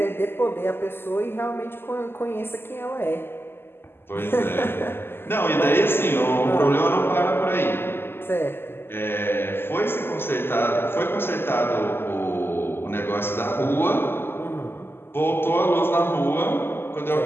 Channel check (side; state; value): right; late; 0.11 ms